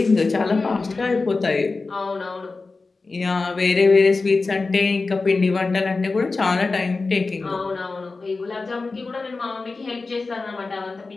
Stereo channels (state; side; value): quieter; right; 3.8 dB